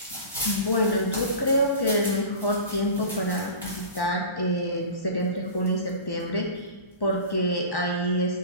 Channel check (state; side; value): inverted; both; correlation -0.34